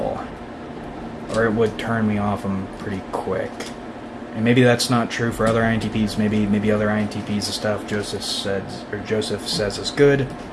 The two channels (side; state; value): both; identical; correlation 1.00